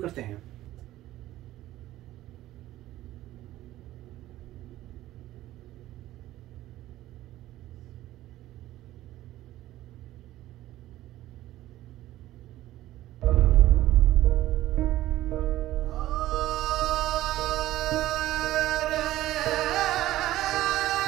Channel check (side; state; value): left; quieter; 15.0 dB